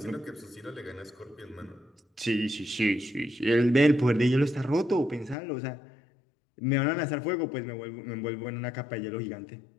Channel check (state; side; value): drops out; right; at 5.4 s